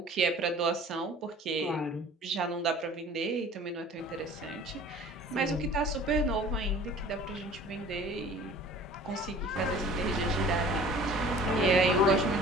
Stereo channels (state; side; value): normal; both; correlation 0.47